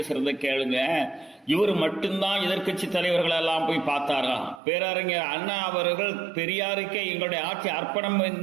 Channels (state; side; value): drops out; left; at 4.6 s